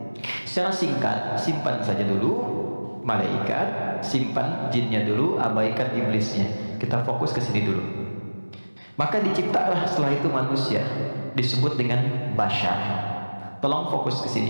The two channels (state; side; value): inverted; both; correlation -1.00